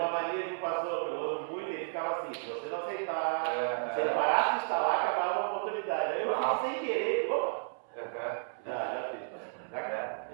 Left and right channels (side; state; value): left; silent; 56 dB below the other